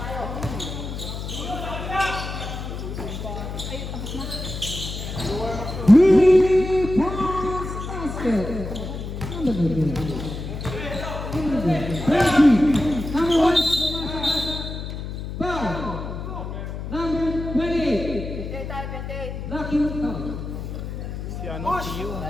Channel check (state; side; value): noise; left; hum, 7 dB below the sound